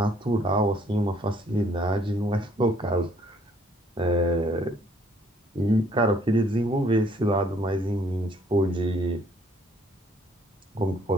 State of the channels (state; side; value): normal; both; correlation 0.63